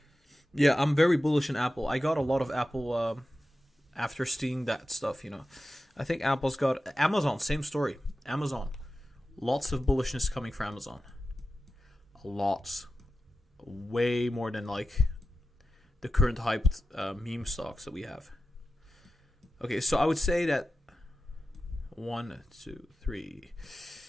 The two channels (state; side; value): normal; both; correlation 0.92